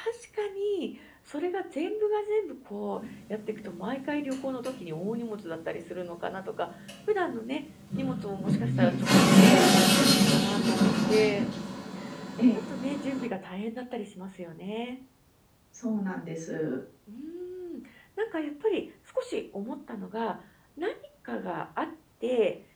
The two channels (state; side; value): identical; both; correlation 1.00